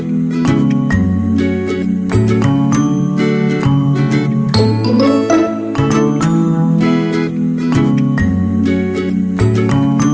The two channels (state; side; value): identical; both; correlation 1.00